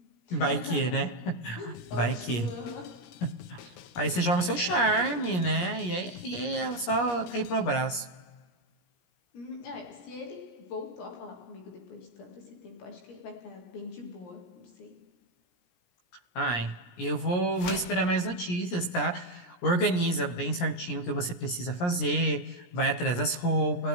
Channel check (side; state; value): right; late; 17 ms